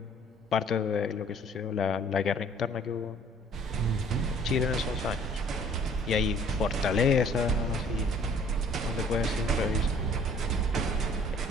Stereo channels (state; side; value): normal; both; correlation 0.55